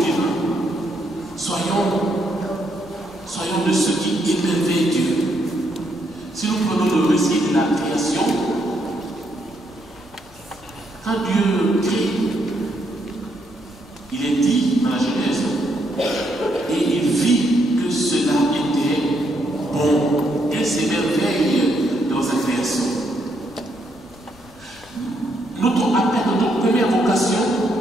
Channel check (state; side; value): normal; both; correlation 0.75